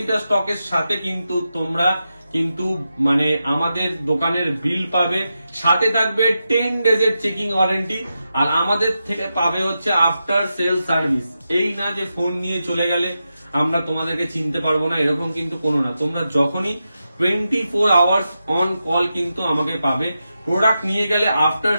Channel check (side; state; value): both; inverted; correlation -0.89